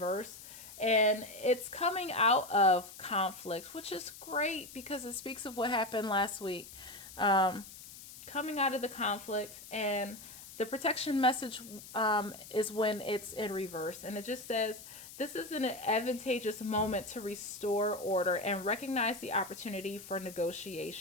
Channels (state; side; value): noise; left; hiss, 15 dB below the sound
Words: and it's coming out of conflict, which is great because it speaks of what happened last week. Coming out of the conflict, and the protection message is when it's in reverse, and it just says, this is an advantageous moment to restore order and recognize the opportunity for